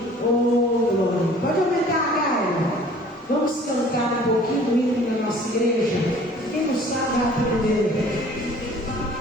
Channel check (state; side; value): normal; both; correlation 0.51